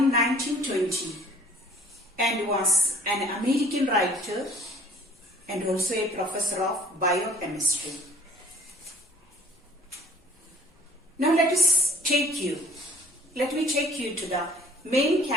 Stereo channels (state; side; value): normal; both; correlation 0.53